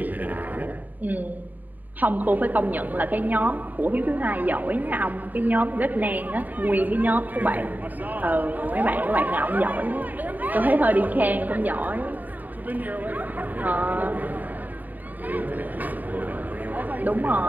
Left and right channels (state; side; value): late; left; 0.084 ms